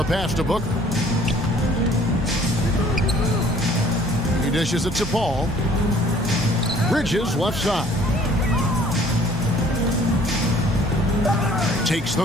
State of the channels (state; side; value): normal; both; correlation 0.56